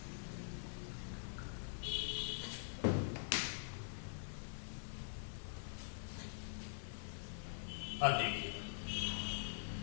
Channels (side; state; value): right; silent; digital silence